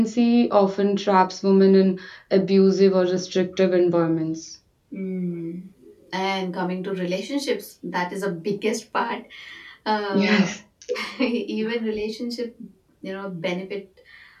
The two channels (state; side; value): identical; both; correlation 1.00